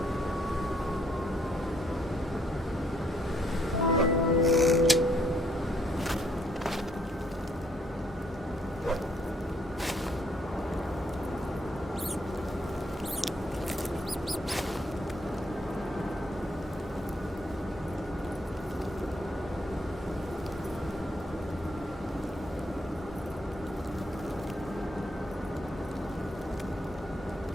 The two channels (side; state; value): both; normal; correlation 0.70